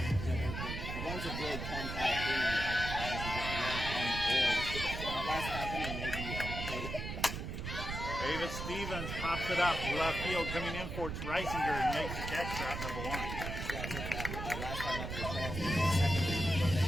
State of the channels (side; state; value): right; noise; rumble, 5 dB below the sound